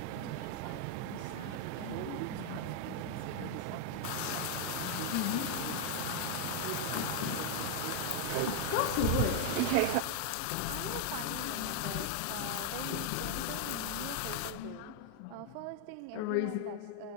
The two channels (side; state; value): both; different; correlation 0.00